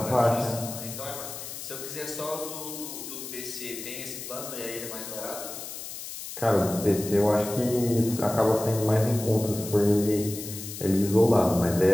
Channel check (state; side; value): noise; left; hiss, 10 dB below the sound